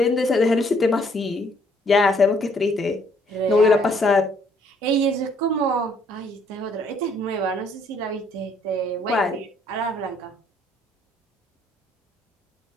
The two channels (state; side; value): normal; both; correlation 0.65